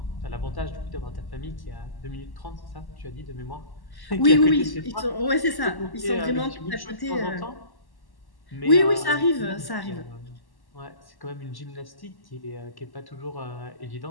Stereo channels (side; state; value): right; late; 1.1 ms